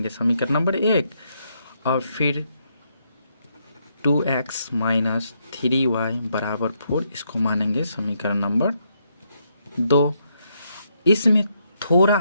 समीकरण नंबर 1। और फिर 2x - 3y बराबर 4, इसको मानेंगे समीकरण नंबर 2। इसमें थोड़ा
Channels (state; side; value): inverted; both; correlation -0.76